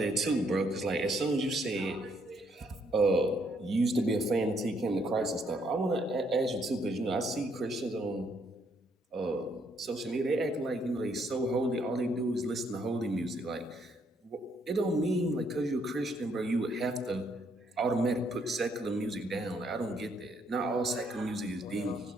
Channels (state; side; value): normal; both; correlation 0.71